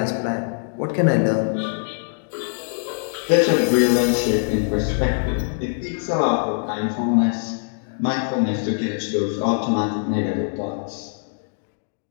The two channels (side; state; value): right; silent; digital silence